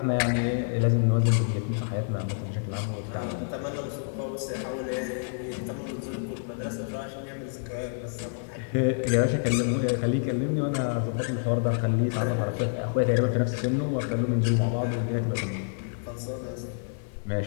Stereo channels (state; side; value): silent; right; digital silence